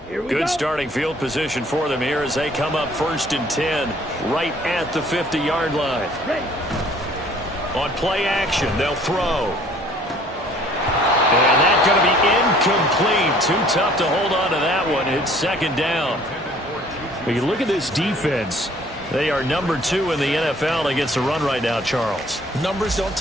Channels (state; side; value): normal; both; correlation 0.56